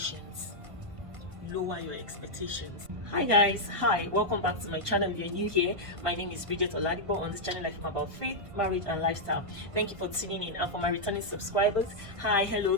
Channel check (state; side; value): late; left; 1.5 ms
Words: Lower your expectations. Hi guys, hi, welcome back to my channel. If you're new here, my name is Bridget Oladipo. On this channel I film about faith, marriage and lifestyle. Thank you for tuning in. And for my returning subscribers, hi, hello,